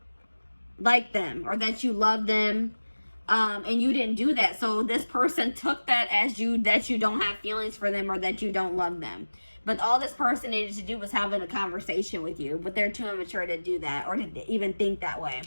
like them or that you love them. And you didn't do that. So this person took that as that you don't have feelings for them or that you don't love them. But all this person needed to do was having a conversation with you. But they're too immature to do that or to even think that way.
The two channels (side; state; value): both; inverted; correlation -1.00